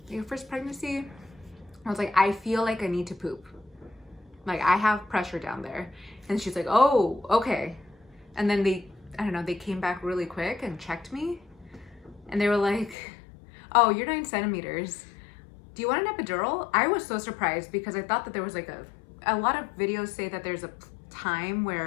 Your first pregnancy? I was like, I feel like I need to poop. Like, I have pressure down there. And she's like, oh, okay. And then they came back really quick and checked me. And they were like, oh, you're 9 centimeters. Do you want an epidural? I was so surprised because I thought that there was like a lot of videos say that there's a time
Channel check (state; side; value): drops out; right; at 13.0 s